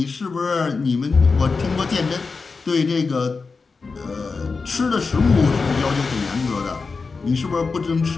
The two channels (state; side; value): quieter; right; 4.5 dB